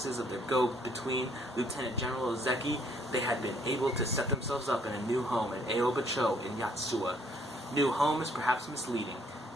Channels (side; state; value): both; normal; correlation 0.65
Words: of their go-between, Lieutenant General Ozeki, they had been able to set themselves up in a new home at Aoba-cho in Yatsuwa. New home is perhaps misleading.